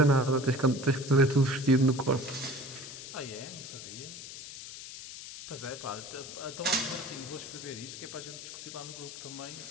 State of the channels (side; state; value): left; noise; hiss, 11 dB below the sound